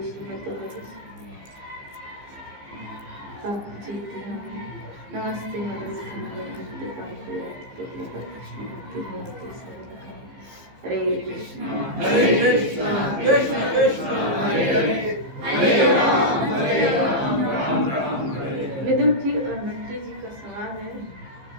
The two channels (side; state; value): left; late; 15 ms